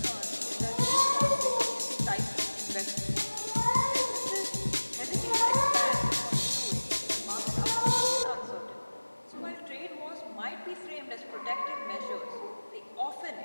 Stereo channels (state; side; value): inverted; both; correlation -1.00